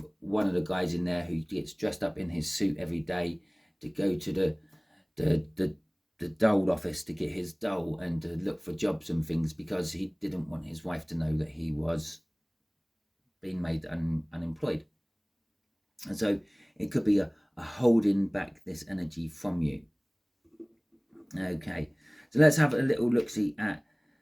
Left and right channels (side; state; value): both; identical; correlation 1.00